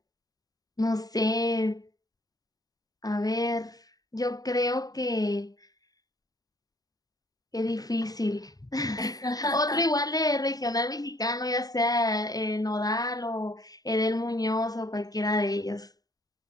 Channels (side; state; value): right; late; 0.18 ms